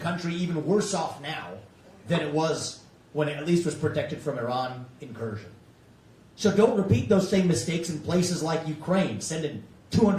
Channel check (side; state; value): both; identical; correlation 1.00